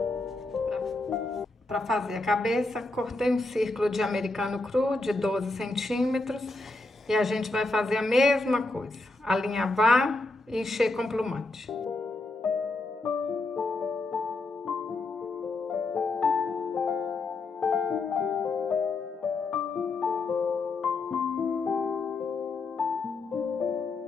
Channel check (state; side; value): quieter; right; 3.2 dB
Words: Para fazer a cabeça, cortei um círculo de americano cru de 12 centímetros e a gente vai fazer a mesma coisa, alinhavar e encher com plumante.